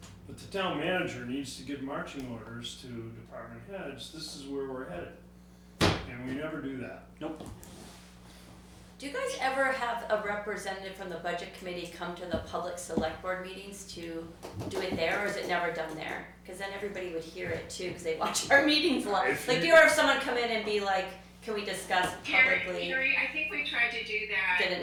but the town manager needs to give marching orders to department heads. This is where we're headed. And we never do that. Nope. Do you guys ever have a representative from the budget committee come to the public select board meetings to do it there, or is it never done there? Because then everybody would hear it too, because they watch our meetings live. Do you ever have someone come in and be like, can we discuss publicly? Carrie, I think we tried to do that. Did it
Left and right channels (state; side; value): identical; both; correlation 1.00